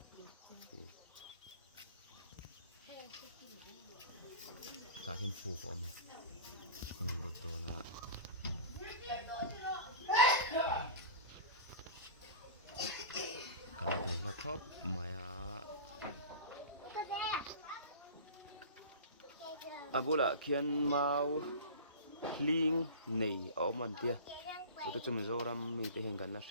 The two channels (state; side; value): inverted; both; correlation -0.32